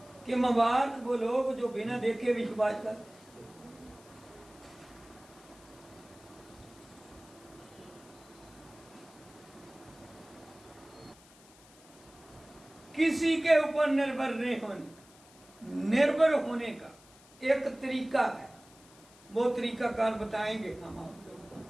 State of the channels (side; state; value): left; noise; hiss, 24 dB below the sound